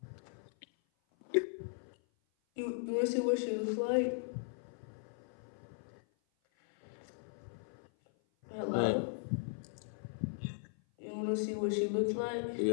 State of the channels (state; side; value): silent; right; 52 dB below the other